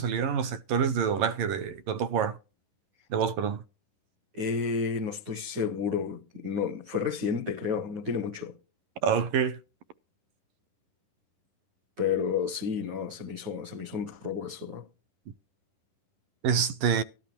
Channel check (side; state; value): left; late; 11 ms